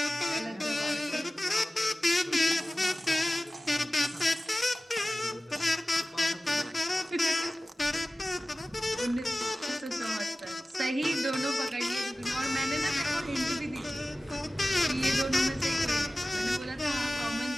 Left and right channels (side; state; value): both; normal; correlation 0.96